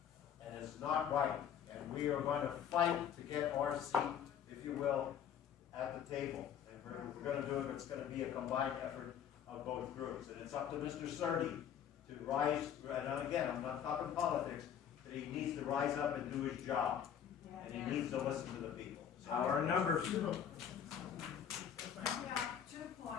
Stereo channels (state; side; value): quieter; right; 8.8 dB